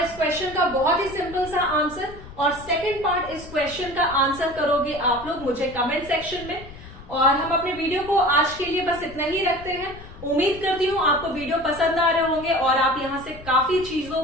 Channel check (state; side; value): noise; left; rumble, 17 dB below the sound